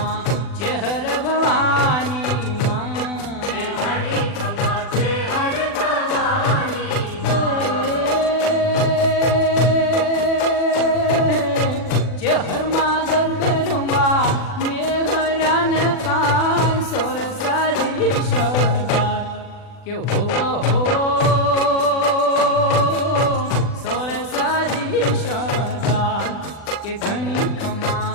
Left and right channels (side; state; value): right; late; 40 ms